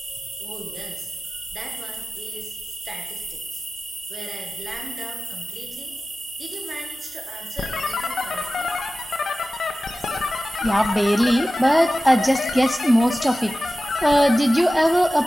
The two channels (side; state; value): both; normal; correlation 0.95